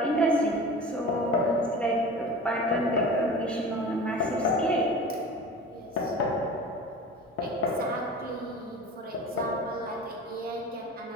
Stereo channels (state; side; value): normal; both; correlation 0.36